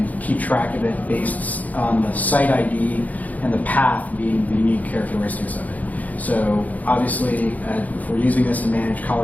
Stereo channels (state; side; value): late; right; 0.077 ms